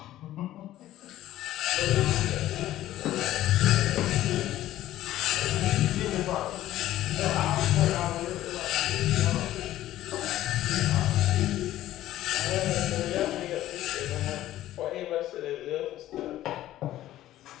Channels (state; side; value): quieter; right; 14.0 dB